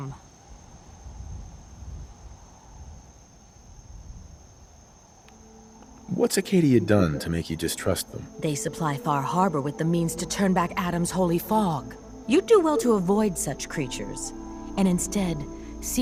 What's Arcadia done to make you distrust them? They supply Far Harbor with the means to turn back Adam's holy fog. You'd do well to avoid such creatures, and instead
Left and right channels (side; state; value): both; identical; correlation 1.00